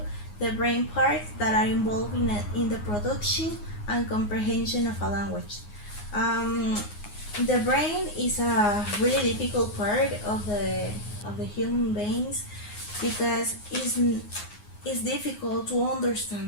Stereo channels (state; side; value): late; right; 9.6 ms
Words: the brain parts that are involved in the production and comprehension of a language. Um, the brain is a really difficult part of the human beings because it's difficult to